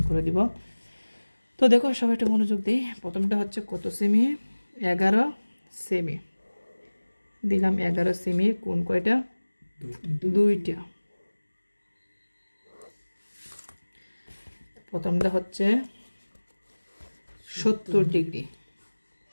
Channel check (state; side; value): inverted; both; correlation -1.00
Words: করে দিব। তো দেখো সবাই একটু মনোযোগ দিই। প্রথমটা হচ্ছে কত সেমি, 11 সেমি দিলাম, 11 সেমি। কোণ কয়টা, 2টা। প্রথমটা হচ্ছে 70 ডিগ্রি,